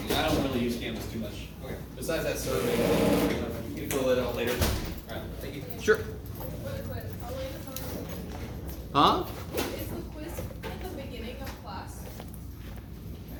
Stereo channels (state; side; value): identical; both; correlation 1.00